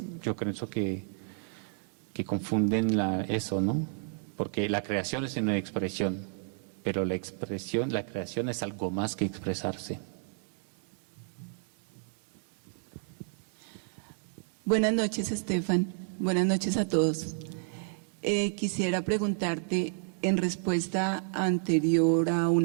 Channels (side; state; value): left; silent; 57 dB below the other